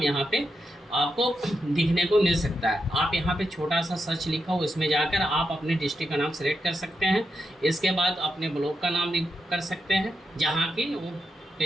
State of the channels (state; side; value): normal; both; correlation 0.85